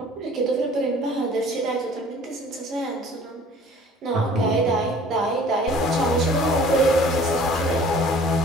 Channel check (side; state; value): both; normal; correlation 0.50